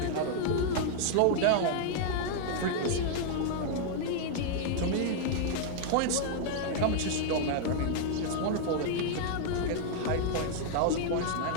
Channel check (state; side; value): different; both; correlation 0.00